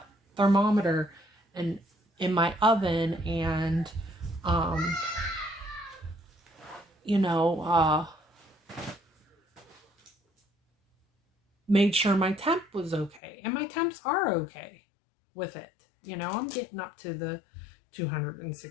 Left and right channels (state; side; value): drops out; right; at 13.2 s